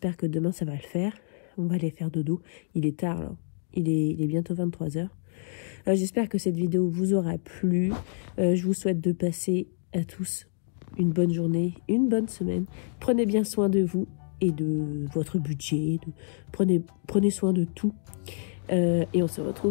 que demain, ça va le faire. On va aller faire dodo. Il est tard, là. Il est bientôt 23h. J'espère que cette vidéo vous aura plu. Je vous souhaite de passer à tous une bonne journée, une bonne semaine. Prenez bien soin de vous et de votre budget. Prenez soin de tout. Et on se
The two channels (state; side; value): silent; right; digital silence